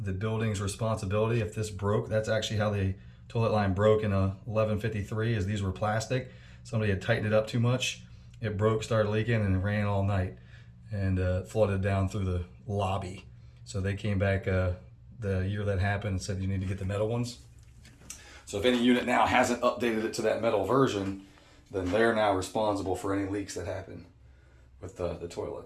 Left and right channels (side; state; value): both; identical; correlation 1.00